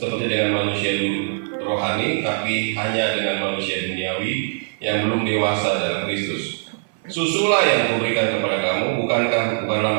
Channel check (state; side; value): silent; left; 58 dB below the other